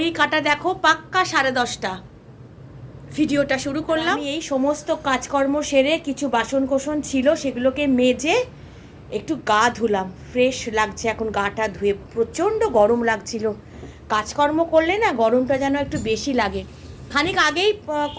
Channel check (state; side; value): identical; both; correlation 1.00